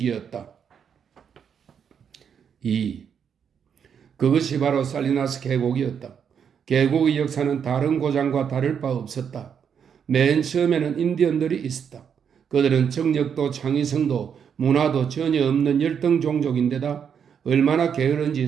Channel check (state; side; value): quieter; left; 7.5 dB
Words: 2. 그것이 바로 살리나스 계곡이었다. 계곡의 역사는 다른 고장과 다를 바 없었다. 맨 처음에는 인디언들이 있었다. 그들은 정력도 창의성도 문화도 전혀 없는 열등 종족인데다 얼마나 게으른지